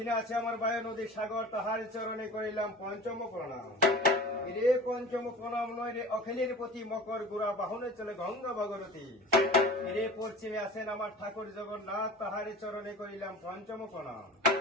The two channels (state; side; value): normal; both; correlation 0.39